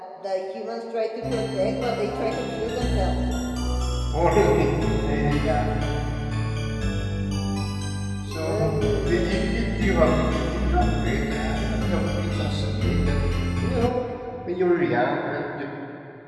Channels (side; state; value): both; identical; correlation 1.00